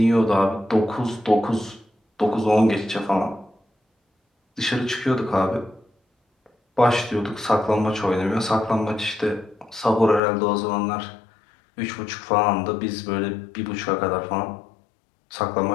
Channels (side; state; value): right; drops out; at 10.2 s